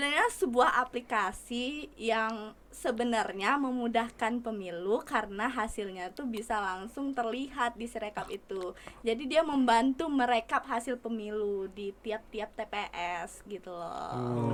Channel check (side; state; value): both; identical; correlation 1.00